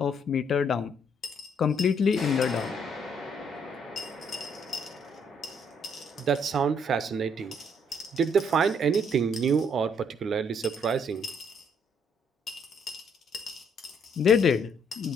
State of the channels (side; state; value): both; normal; correlation 0.68